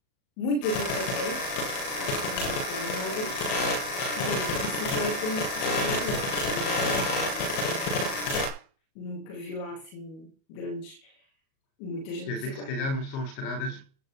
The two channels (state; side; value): late; right; 37 ms